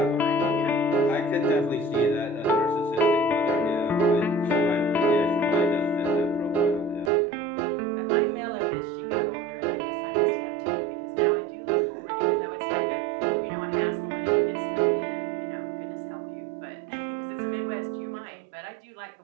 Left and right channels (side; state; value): left; drops out; at 7.1 s